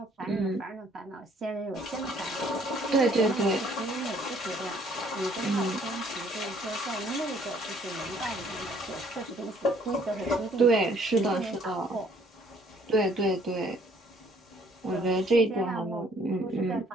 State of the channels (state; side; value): normal; both; correlation 0.61